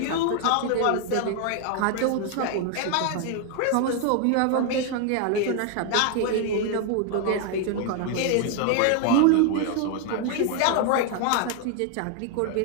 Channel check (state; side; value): different; both; correlation 0.01